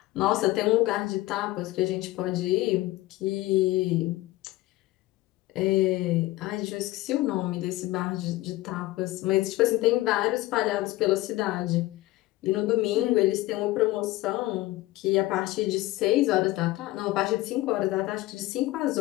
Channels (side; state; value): right; quieter; 18.0 dB